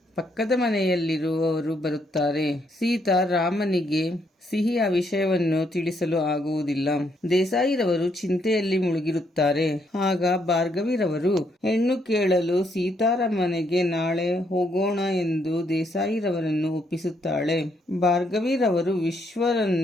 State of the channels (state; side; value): normal; both; correlation 0.74